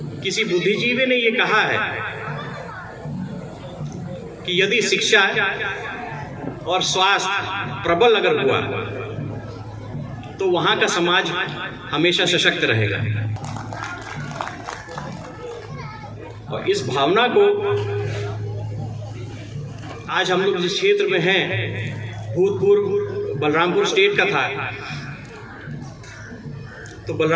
किसी बुद्धिजीवी ने ये कहा है कि यदि शिक्षा और स्वास्थ्य प्रबल अगर हुआ तो वहां का समाज हमेशा सशक्त रहेगा। और इस भावना को आज हम लोग जिस क्षेत्र में हैं, भूतपूर्व बलरामपुर स्टेट का था, तो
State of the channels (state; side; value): identical; both; correlation 1.00